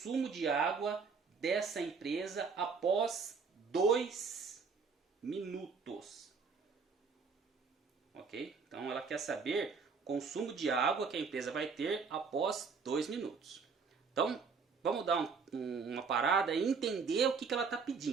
de água dessa empresa após 2 minutos? Ok? Então ela quer saber o consumo de água que a empresa vai ter após 2 minutos. Então, vamos dar uma parada e entender o que ela está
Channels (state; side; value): quieter; left; 5.2 dB